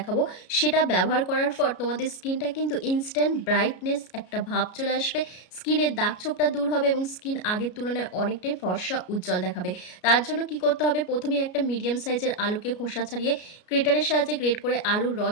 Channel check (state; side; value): late; right; 33 ms